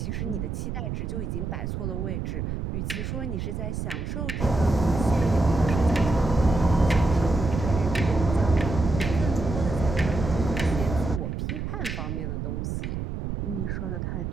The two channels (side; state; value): right; noise; rumble, 4 dB below the sound